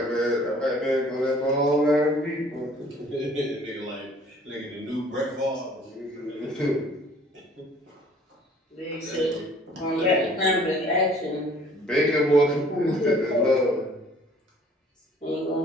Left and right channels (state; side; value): normal; both; correlation 0.55